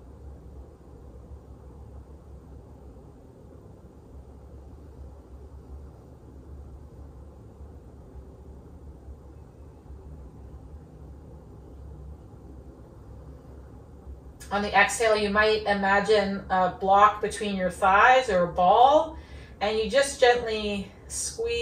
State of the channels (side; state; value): both; identical; correlation 1.00